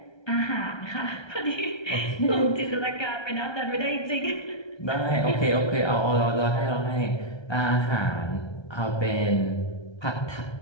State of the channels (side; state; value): right; late; 1.3 ms